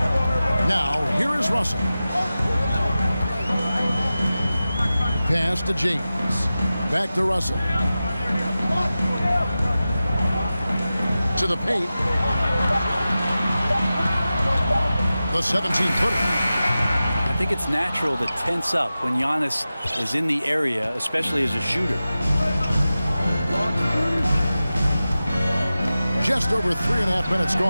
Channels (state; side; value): inverted; both; correlation -0.95